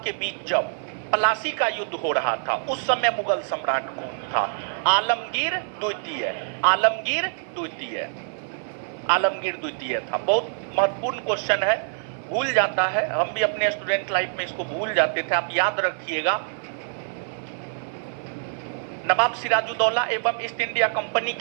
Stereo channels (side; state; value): left; silent; 56 dB below the other